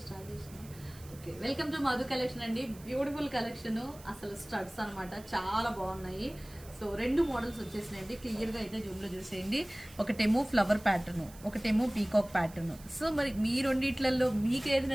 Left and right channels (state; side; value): noise; right; hiss, 21 dB below the sound